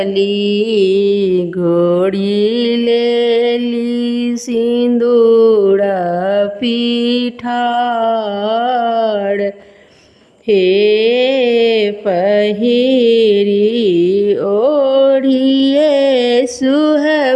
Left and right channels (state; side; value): identical; both; correlation 1.00